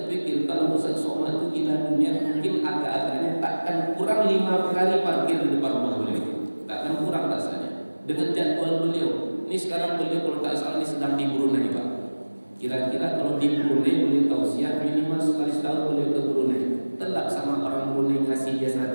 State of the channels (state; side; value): inverted; both; correlation -1.00